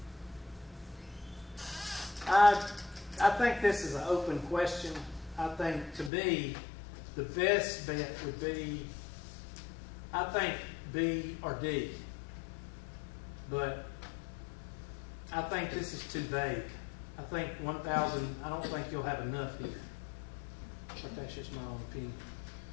I think this is an open question. I think, to me, the best bet would be, I think, B or D. But I think this is too vague. I think 1,000, I don't think you'll have enough here. But that's just my own opinion.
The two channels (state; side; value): drops out; right; at 6.1 s